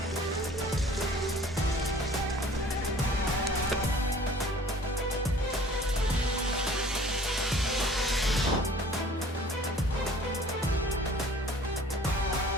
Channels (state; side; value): normal; both; correlation 0.50